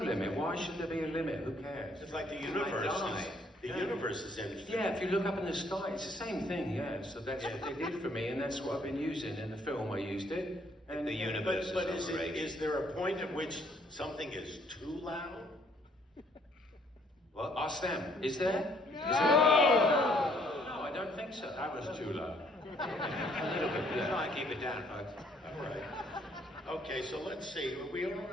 Why should there be a limit? Who cares? It's like the universe. The universe is infinite. Yeah, if you look up in the sky, it's the same thing, yeah. So that's what they did for me, and that's what I've been using. In the film, I used it. And The universe But is overrated. is there a point at which something is too loud? What? Ask them. Is there? No! No, I don't think so. that was too loud. A little bit, yeah. Try and keep it down, folks. All right. Okay, so let's see. We don't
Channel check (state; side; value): normal; both; correlation 0.65